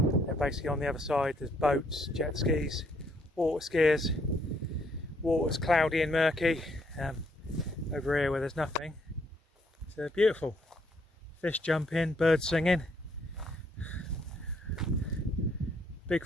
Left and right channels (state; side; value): normal; both; correlation 0.70